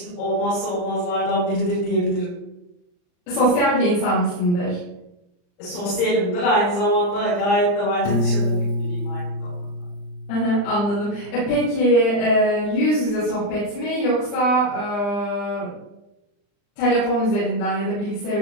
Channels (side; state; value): right; late; 39 ms